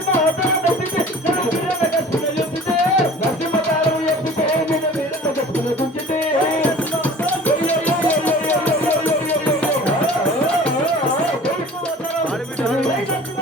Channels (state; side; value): normal; both; correlation 0.44